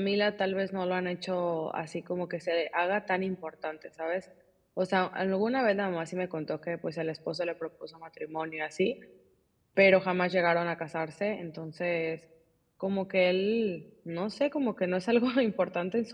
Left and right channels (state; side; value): identical; both; correlation 1.00